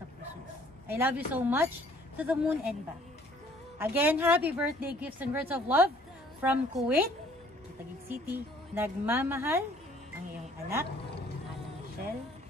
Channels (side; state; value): both; normal; correlation 0.58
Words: puso. I love you so much to the moon and back. Again, happy birthday gifts and words of love from Kuwait, Taguig City. Nagmamahal ang iyong anak, Ana Michelle.